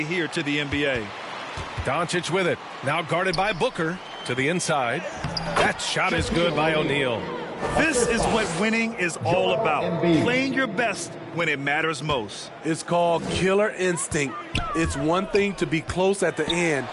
here to the NBA. Doncic with it, now guarded by Booker to the inside. That shot is good by O'Neal. This is what winning is all about, playing your best when it matters most. It's called killer instinct. It's one thing to be close at the end.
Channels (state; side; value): identical; both; correlation 1.00